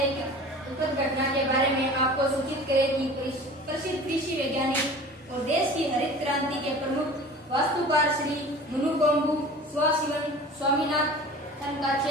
एक दुखद घटना के बारे में आपको सूचित करें कि प्रसिद्ध कृषि वैज्ञानिक और देश की हरित क्रांति के प्रमुख वास्तुकार श्री मुनुकोम्बु स्वामीनाथन का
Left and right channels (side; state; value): both; normal; correlation 0.41